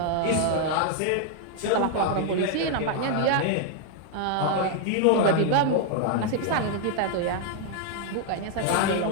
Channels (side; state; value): both; different; correlation 0.00